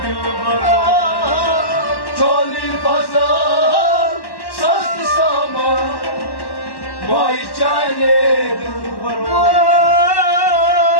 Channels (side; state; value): right; late; 1.1 ms